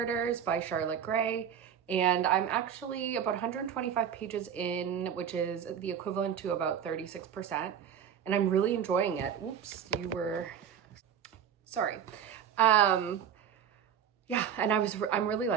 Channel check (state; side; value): quieter; left; 8.5 dB